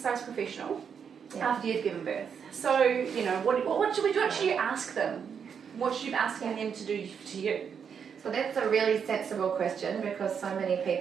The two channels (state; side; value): quieter; left; 7.1 dB